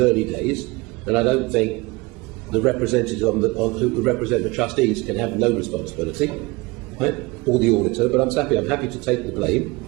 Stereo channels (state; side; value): quieter; left; 23.9 dB